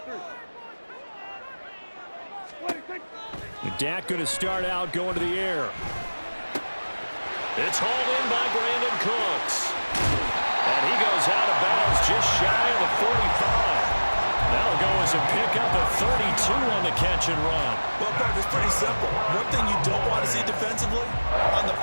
Dak going to start out going to the air. It's hauled in by Brandon Cooks. And he goes out of bounds just shy of the 45. That'll go as a pickup of 32 on the catch and run. Well, Park, it's pretty simple. One thing you don't want to see defensively, on the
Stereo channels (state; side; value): inverted; both; correlation -1.00